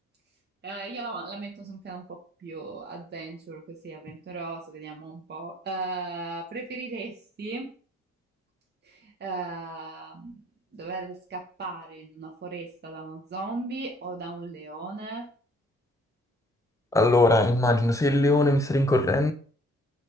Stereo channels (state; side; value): normal; both; correlation 0.62